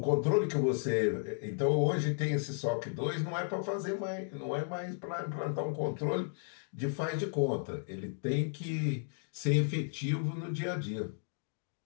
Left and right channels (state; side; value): silent; right; digital silence